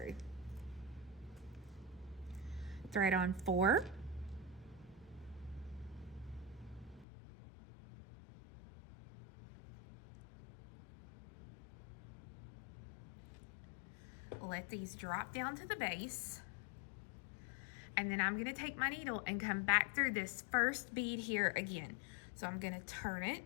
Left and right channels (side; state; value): right; drops out; at 7.1 s